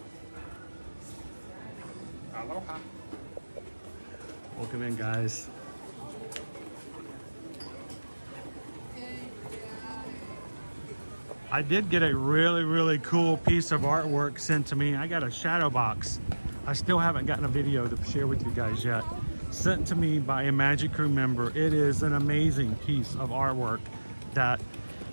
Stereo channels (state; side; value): inverted; both; correlation -1.00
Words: Aloha. Welcome in, guys. I did get a really, really cool piece of artwork sent to me. I got a shadow box. I still haven't gotten a video to share with you guys yet. Sent to me by a Magic Crew member. It is an amazing piece of artwork that